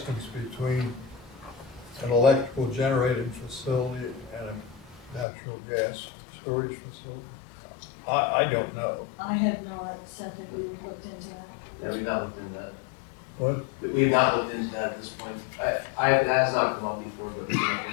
between an electrical generating facility and a natural gas storage facility? I don't know. I have not said that we looked into that. Yeah, we've not looked into that. What? We have not looked into that at this point. That has not come up before, but we can look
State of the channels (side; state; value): right; drops out; at 5.2 s